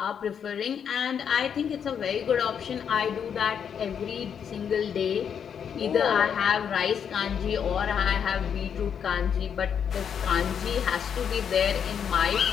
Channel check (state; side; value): quieter; right; 7.7 dB